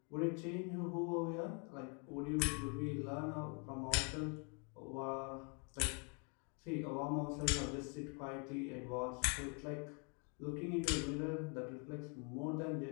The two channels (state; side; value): quieter; right; 36.4 dB